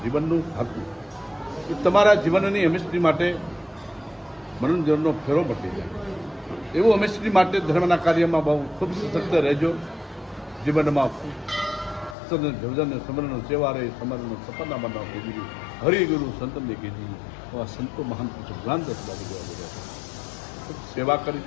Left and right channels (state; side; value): drops out; right; at 12.2 s